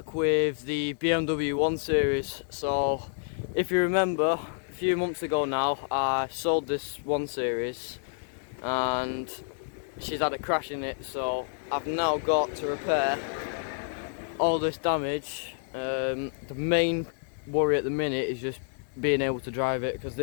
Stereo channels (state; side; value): silent; right; digital silence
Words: with the BMW 1 Series. So if you remember, a few months ago now I sold this 1 Series and she's had a crash in it, so I've now got to repair all this damage. The main worry at the minute is just being able to drive it, because